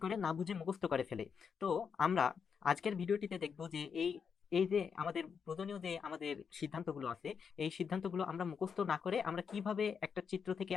করে না বুঝে মুখস্থ করে ফেলে। তো আমরা আজকের ভিডিওটিতে দেখব যে এই এই যে আমাদের প্রয়োজনীয় যে আমাদের সিদ্ধান্তগুলো আছে, এই সিদ্ধান্তগুলো আমরা মুখস্থ না করে আমরা কিভাবে একটা চিত্র থেকে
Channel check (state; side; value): quieter; right; 6.5 dB